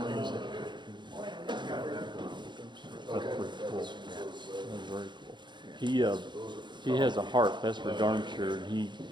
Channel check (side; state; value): left; late; 0.22 ms